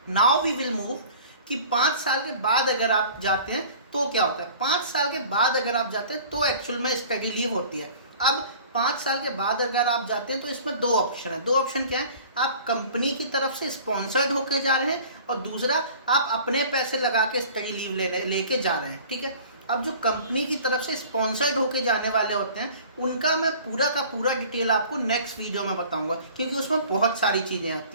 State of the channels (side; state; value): both; inverted; correlation -0.46